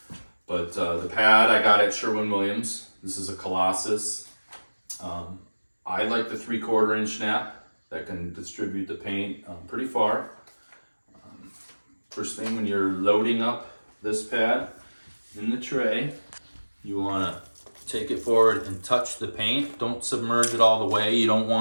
But the pad I got at Sherwin-Williams. This is a Colossus. I like the 3/4 inch snap that can distribute the paint pretty far. First thing, when you're loading up this pad in the tray, you want to take it forward and touch the paint. Don't submerge it all the way. You don't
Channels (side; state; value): both; inverted; correlation -1.00